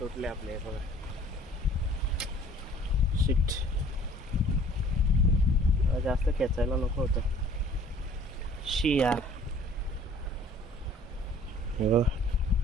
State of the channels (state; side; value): normal; both; correlation 0.52